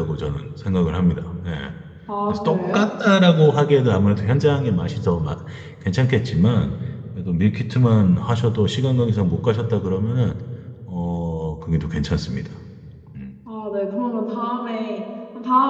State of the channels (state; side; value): identical; both; correlation 1.00